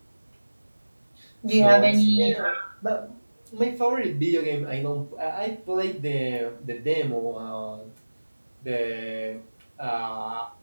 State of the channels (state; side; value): inverted; both; correlation -1.00